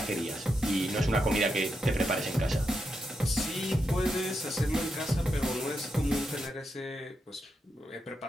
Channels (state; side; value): normal; both; correlation 0.85